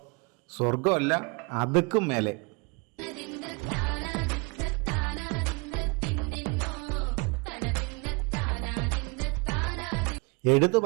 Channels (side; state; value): left; quieter; 30.1 dB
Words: സ്വർഗമല്ല അതുക്കും മേലെ. എടുത്തു